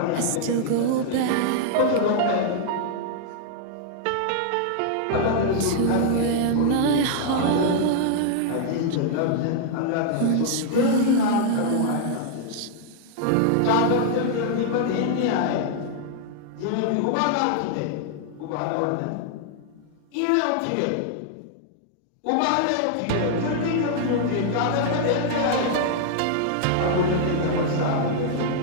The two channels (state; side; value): different; both; correlation -0.01